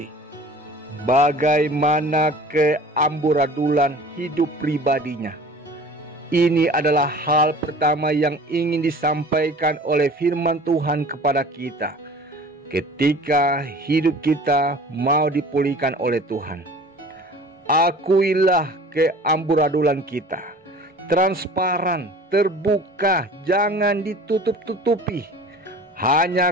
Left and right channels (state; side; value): normal; both; correlation 0.44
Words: bagaimana keamburadulan hidup pribadinya. Ini adalah hal pertama yang ingin disampaikan oleh firman Tuhan kepada kita. ketika hidup kita mau dipulihkan oleh Tuhan. Akuilah keamburadulan kita, transparan, terbuka, jangan ditutup-tutupi.